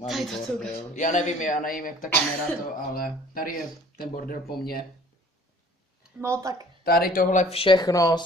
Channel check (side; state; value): both; normal; correlation 0.51